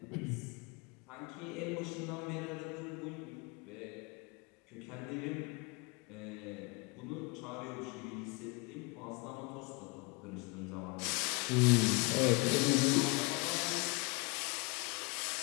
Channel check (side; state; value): right; quieter; 29.5 dB